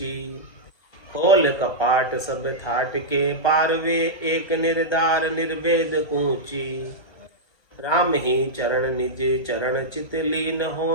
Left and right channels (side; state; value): right; late; 1.3 ms